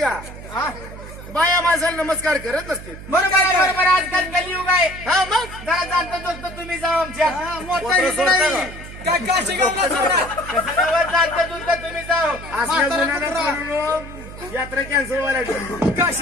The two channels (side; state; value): right; noise; hum, 14 dB below the sound